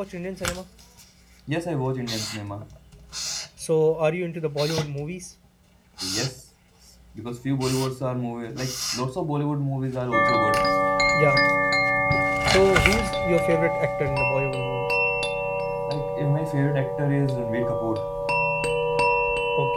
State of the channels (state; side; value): identical; both; correlation 1.00